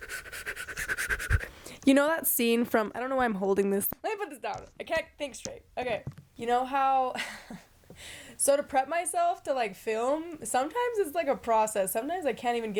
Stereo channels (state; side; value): identical; both; correlation 1.00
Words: You know that scene from, I don't know why I'm holding this. Let me put this down. I can't think straight. Okay. You know how, so to prep myself to like film, sometimes it's like a process. Sometimes I can't even